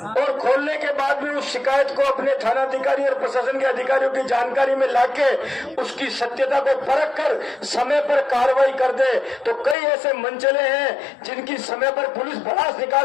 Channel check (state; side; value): drops out; right; at 9.8 s